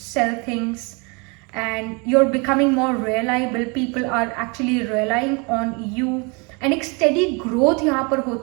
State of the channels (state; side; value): quieter; left; 30.8 dB